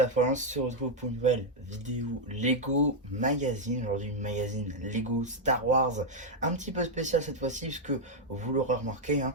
fois, on se retrouve pour une nouvelle vidéo Lego Magazine. Aujourd'hui, une magazine Lego Star Wars, un petit peu spécial cette fois-ci, puisque vous l'aurez remarqué, hein,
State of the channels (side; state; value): both; normal; correlation 0.00